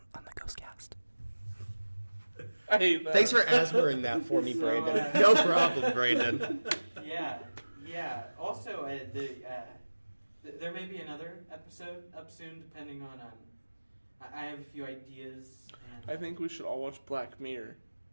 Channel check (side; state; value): both; inverted; correlation -1.00